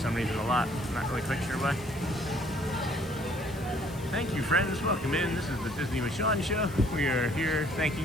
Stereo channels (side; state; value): left; noise; hiss, 20 dB below the sound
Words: reason a lot. I'm not really quite sure why. Thank you, friends. Welcome in. This is the Disney with Sean show. We are here